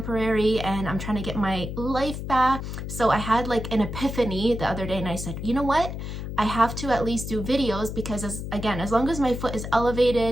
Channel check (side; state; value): left; noise; hum, 6 dB below the sound